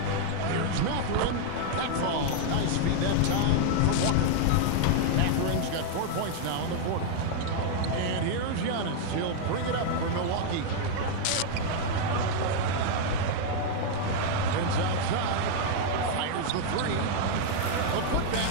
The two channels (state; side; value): different; both; correlation 0.00